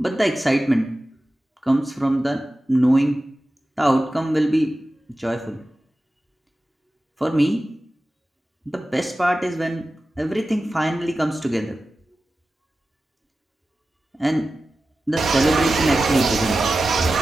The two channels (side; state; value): both; normal; correlation 0.95